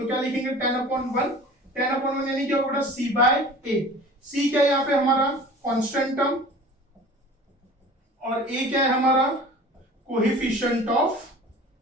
क्या लिखेंगे? 10/1। 10/1 यानी क्या होगा? c/a। c क्या है यहाँ पे? हमारा कांस्टेंट टर्म, और a क्या है? हमारा कोएफिशिएंट ऑफ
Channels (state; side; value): normal; both; correlation 0.42